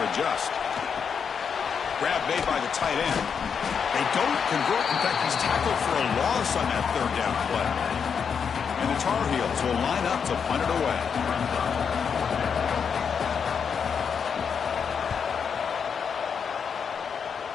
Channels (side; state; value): right; quieter; 6.7 dB